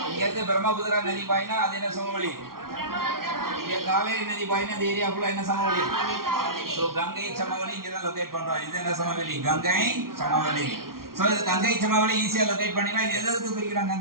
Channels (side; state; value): left; late; 0.93 ms